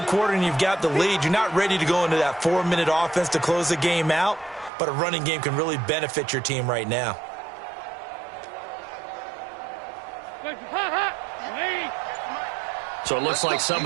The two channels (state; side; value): drops out; left; at 4.7 s